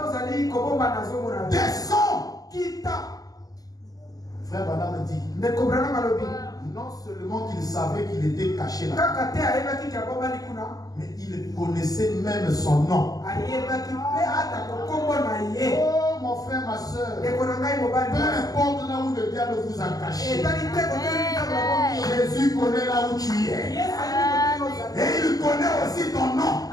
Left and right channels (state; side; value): late; right; 0.17 ms